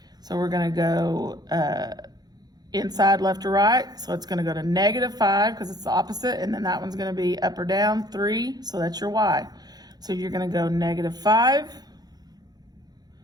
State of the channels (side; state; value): left; late; 0.19 ms